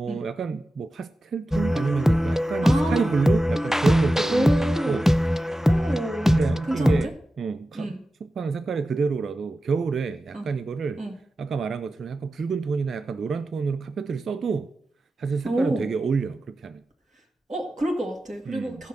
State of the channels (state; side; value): normal; both; correlation 0.93